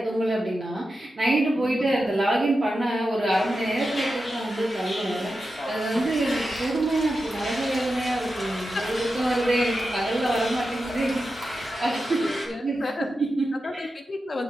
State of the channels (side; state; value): both; normal; correlation 0.90